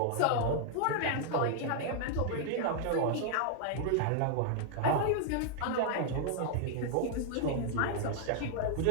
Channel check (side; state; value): both; different; correlation 0.00